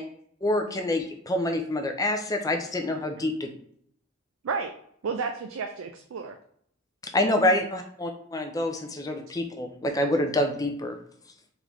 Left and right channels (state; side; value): normal; both; correlation 0.33